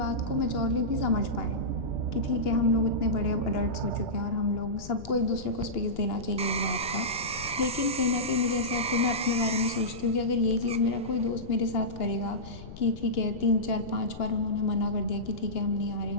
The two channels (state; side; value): noise; left; rumble, 14 dB below the sound